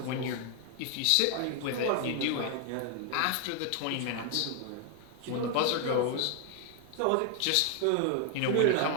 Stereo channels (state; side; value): different; both; correlation 0.00